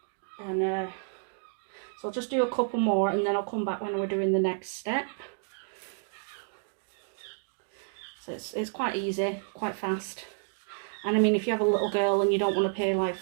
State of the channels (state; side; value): silent; left; digital silence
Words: And so I'll just do a couple more and then I'll come back when we're doing the next step. So it's quite easy, quite fast. And I mean, if you have a little girl and you don't want to pay like